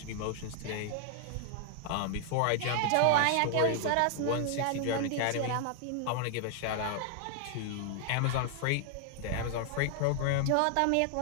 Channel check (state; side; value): different; both; correlation 0.00